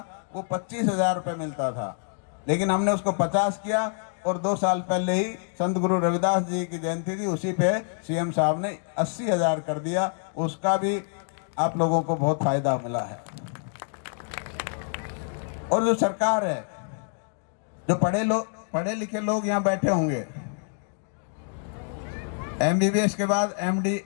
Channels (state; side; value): silent; right; 58 dB below the other